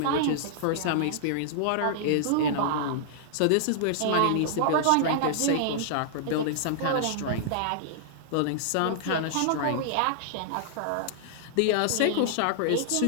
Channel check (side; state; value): both; different; correlation -0.01